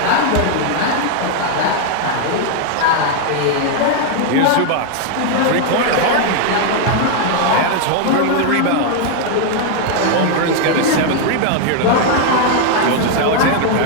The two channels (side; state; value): both; different; correlation 0.00